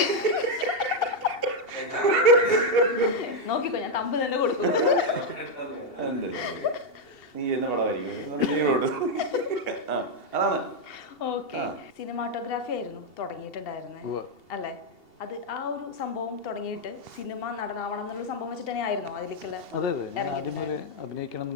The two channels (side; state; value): right; late; 2.7 ms